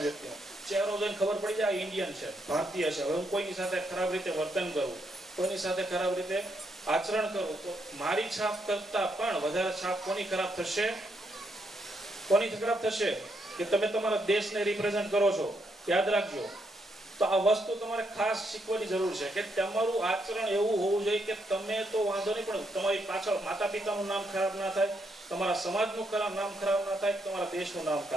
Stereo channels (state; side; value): normal; both; correlation 0.77